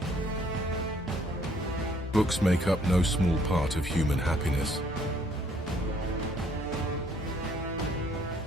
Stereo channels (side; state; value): both; normal; correlation 0.64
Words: Books make up no small part of human happiness.